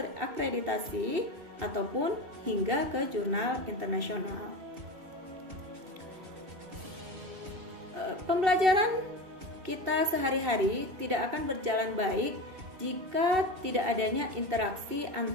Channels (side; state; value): left; late; 2.7 ms